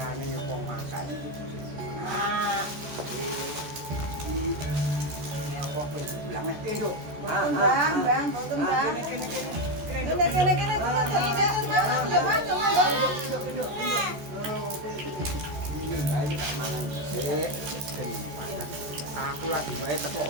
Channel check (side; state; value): left; late; 14 ms